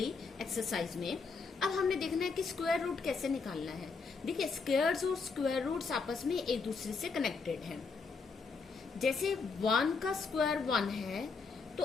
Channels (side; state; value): right; quieter; 4.7 dB